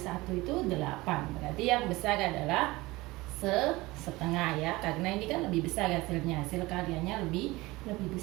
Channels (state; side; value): quieter; left; 20.8 dB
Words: itu 8. Berarti yang besar adalah setengah ya, karena ini kan lebih besar hasilnya, hasil karyanya lebih